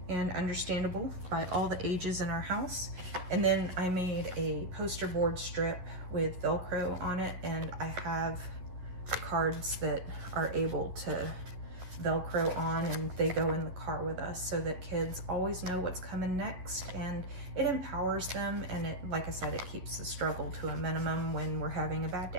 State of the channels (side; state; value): left; late; 11 ms